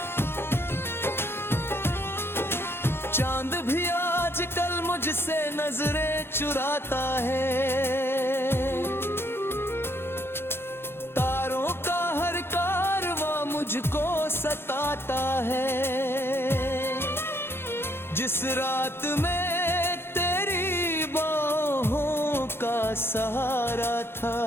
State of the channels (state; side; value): late; right; 0.11 ms